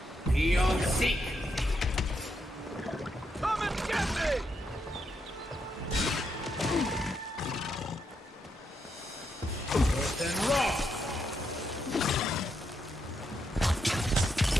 Beyond seek. Come and get me! Earth and rock.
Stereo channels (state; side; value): normal; both; correlation 0.81